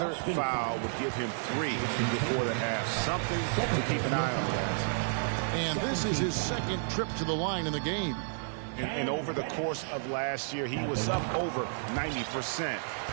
foul would give him 3 before the half. Something to keep an eye on, guys. And this is his second trip to the line in the game. And over the course of last year, he was up over 90%.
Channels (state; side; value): silent; left; digital silence